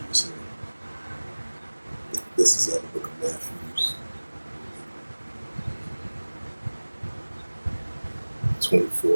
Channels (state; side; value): inverted; both; correlation -1.00